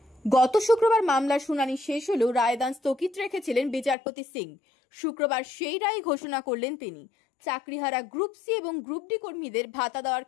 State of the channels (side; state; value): right; drops out; at 4.0 s